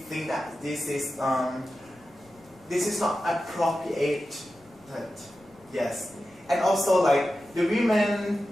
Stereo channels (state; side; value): noise; left; rumble, 28 dB below the sound